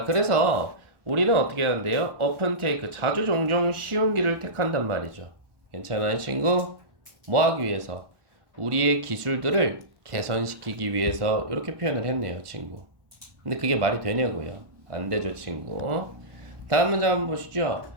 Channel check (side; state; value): left; late; 1.1 ms